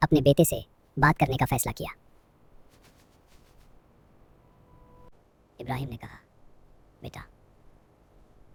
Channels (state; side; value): identical; both; correlation 1.00